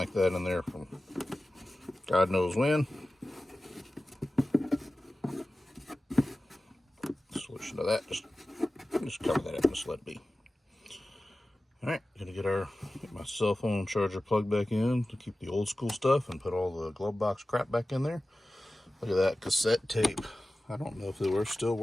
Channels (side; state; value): both; normal; correlation 0.95